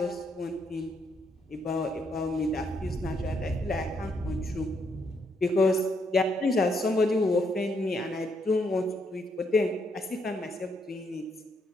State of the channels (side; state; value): both; normal; correlation 0.75